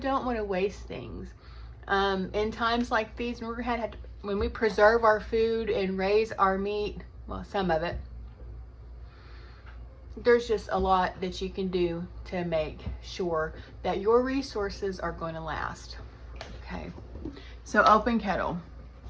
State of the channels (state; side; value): identical; both; correlation 1.00